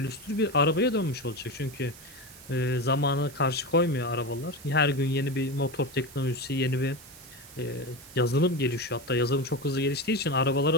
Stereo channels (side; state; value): right; noise; hiss, 19 dB below the sound